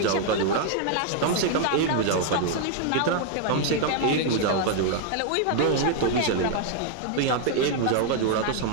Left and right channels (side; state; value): both; different; correlation 0.00